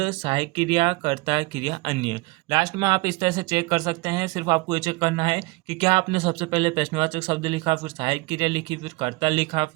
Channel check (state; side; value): quieter; left; 23.9 dB